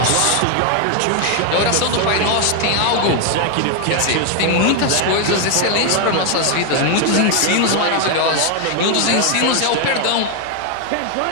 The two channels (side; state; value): both; different; correlation 0.01